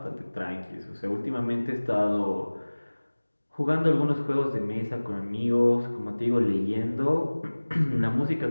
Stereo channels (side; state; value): both; inverted; correlation -1.00